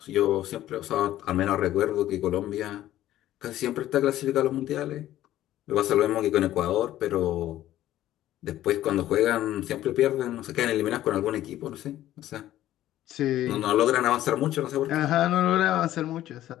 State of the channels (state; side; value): quieter; right; 13.6 dB